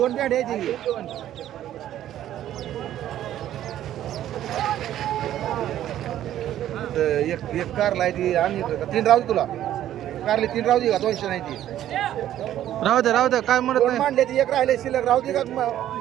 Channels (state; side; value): quieter; left; 12.1 dB